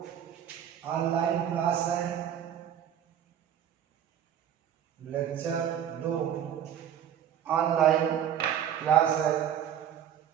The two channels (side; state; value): left; quieter; 9.7 dB